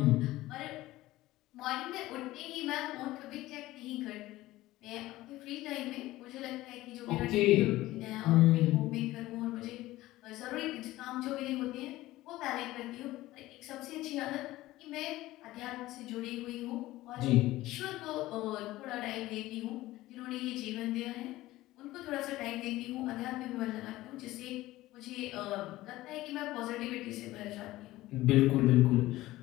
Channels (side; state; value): right; quieter; 17.0 dB